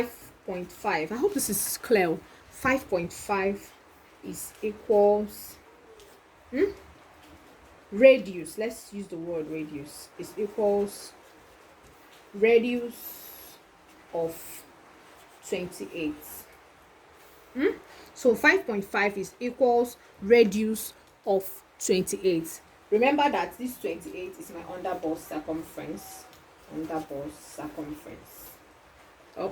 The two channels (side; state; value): both; identical; correlation 1.00